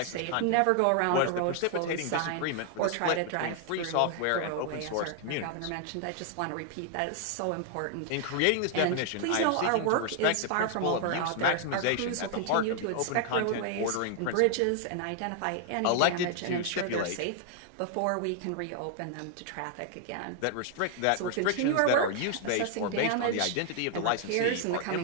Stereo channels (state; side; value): different; both; correlation 0.00